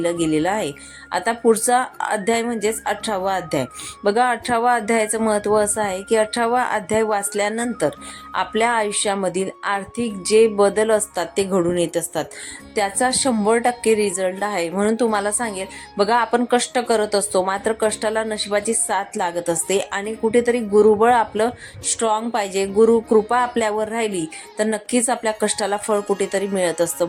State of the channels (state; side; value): identical; both; correlation 1.00